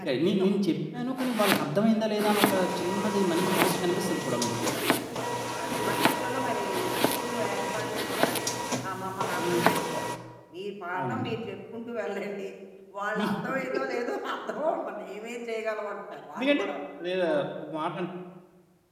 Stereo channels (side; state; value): both; identical; correlation 1.00